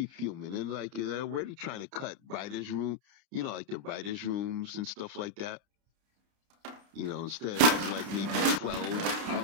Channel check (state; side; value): late; left; 30 ms